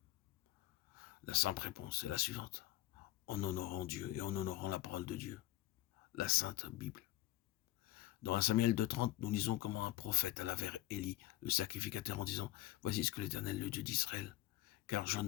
La simple réponse est la suivante: en honorant Dieu et en honorant la parole de Dieu, la Sainte Bible. Dans 1 Samuel 2,30, nous lisons comment un prophète alla vers Élie, le sacrificateur, en disant: voici ce que l'Éternel, le Dieu d'Israël, car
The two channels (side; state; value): right; quieter; 15.8 dB